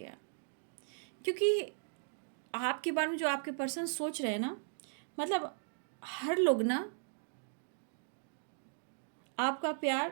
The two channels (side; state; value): left; silent; digital silence